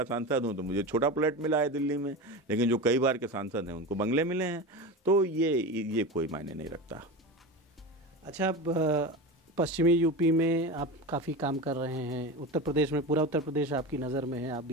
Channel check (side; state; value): both; normal; correlation 0.25